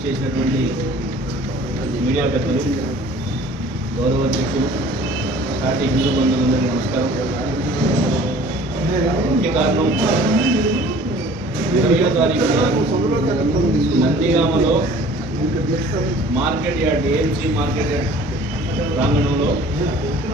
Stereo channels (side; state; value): both; normal; correlation 0.49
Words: మీడియా పెద్దలు, గౌరవ అధ్యక్షులు, పార్టీ హిందూ బంధువులందరికీ నమస్కారం. ముఖ్య కారణం 20వ తారీఖున నందిగామలో market yard AMC market yard ప్రాంగణంలో